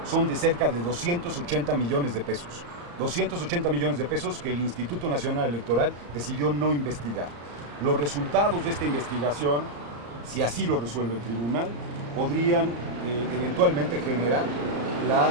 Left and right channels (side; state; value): left; late; 34 ms